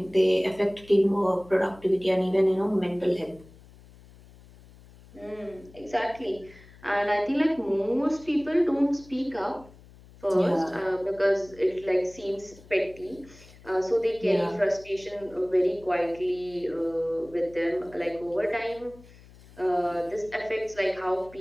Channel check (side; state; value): left; noise; hum, 23 dB below the sound